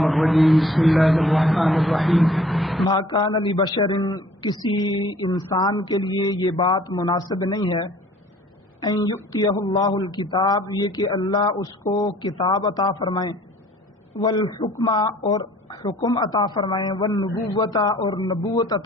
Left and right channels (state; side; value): normal; both; correlation 0.54